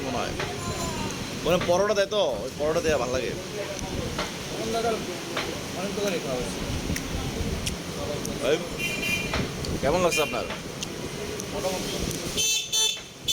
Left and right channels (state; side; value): identical; both; correlation 1.00